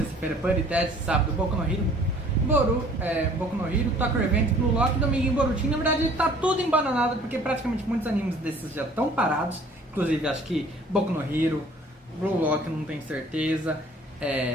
Puri Test, sábado Boku no Hero, Boku no Hero, Tokyo Revenge, Blue Lock, domingo em Boruto. Na verdade tá tudo embananado porque praticamente muitos animes desses já estão parados. Inclusive acho que Boku no Hero, Blue Lock não tenho certeza,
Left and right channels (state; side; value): normal; both; correlation 0.53